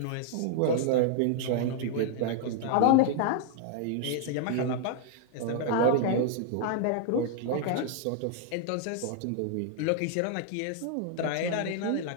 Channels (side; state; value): both; different; correlation 0.00